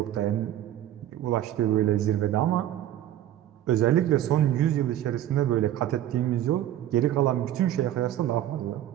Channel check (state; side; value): quieter; left; 12.3 dB